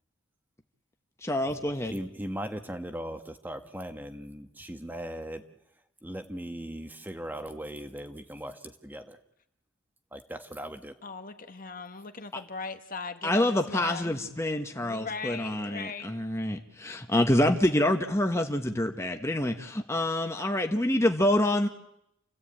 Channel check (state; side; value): normal; both; correlation 0.70